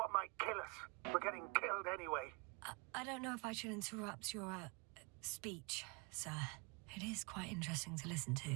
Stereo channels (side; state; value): left; quieter; 31.4 dB